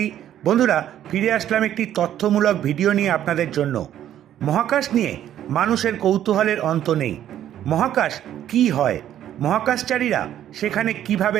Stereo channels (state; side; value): quieter; left; 11.3 dB